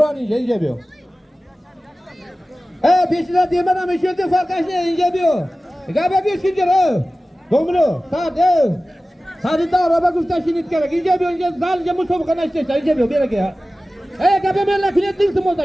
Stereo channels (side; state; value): both; normal; correlation 0.96